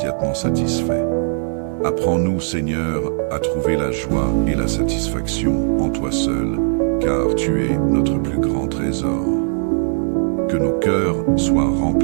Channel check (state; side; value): silent; left; digital silence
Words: satisfaits. Apprends-nous, Seigneur, à trouver la joie et la satisfaction en toi seul, car tu es notre plus grand trésor. Que nos cœurs soient